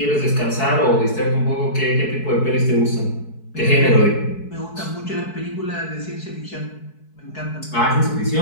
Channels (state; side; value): late; right; 4.6 ms